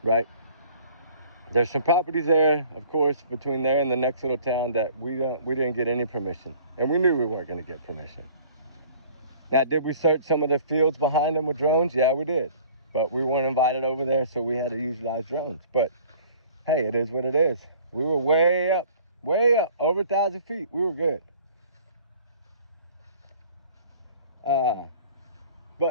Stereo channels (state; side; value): inverted; both; correlation -0.51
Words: right? There's some properties there, of course, between there and the next little town that we didn't get any permission, and we knew we weren't going to get permission. Now, did we search some of the fields behind them with drones? Yeah, we did, but we weren't invited over there, so we had to utilize drones. But hey, it is what it is. We were way up, over 1,000 feet. We were good.